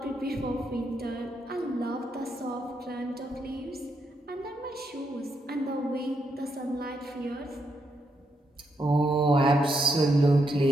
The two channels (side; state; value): both; normal; correlation 0.79